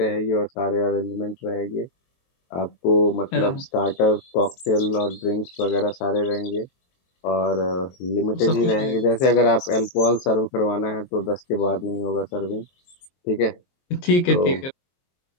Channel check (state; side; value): late; right; 23 ms